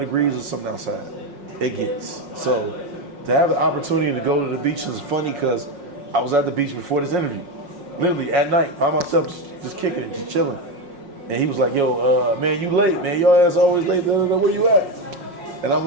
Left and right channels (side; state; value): left; late; 5.5 ms